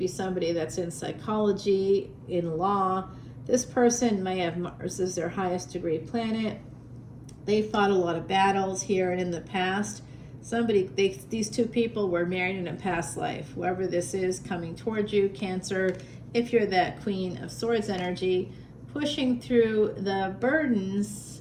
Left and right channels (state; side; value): identical; both; correlation 1.00